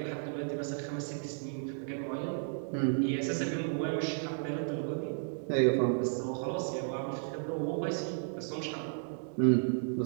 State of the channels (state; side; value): silent; left; 55 dB below the other